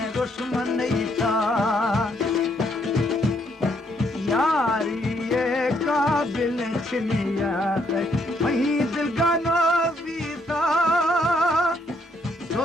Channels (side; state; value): both; normal; correlation 0.72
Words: दुश्मन था यारी ये काबिल छिनियात वही दिल का नबीता